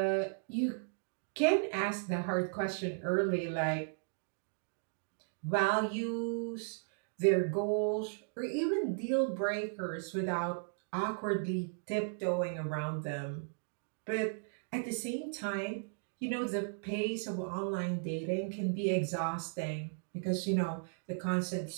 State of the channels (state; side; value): silent; left; digital silence